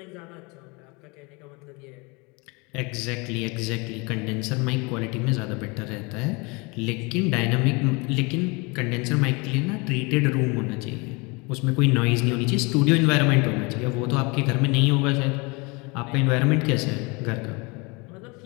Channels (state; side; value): quieter; right; 28.2 dB